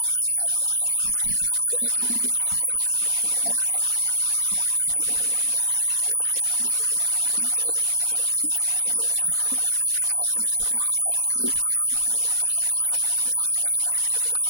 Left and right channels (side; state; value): left; late; 4.0 ms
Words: ምናልባት ኣብ ብዙሕ እዋን ኣካታሓ ክኸውን ይኽእል ዝርእስቲ ግን ኣነ ከም ማይክ ገንዘብ ደይኮንኩ ትምህርቲ የድመርጽ ምክንያቱ ትምህርቲ ከባቢኻ ምፍላጥ እዩ ከባቢኻ ድሕር ፈሊጥካ ኸ እቲ ገንዘብ ከባቢኻ ንኽትነብር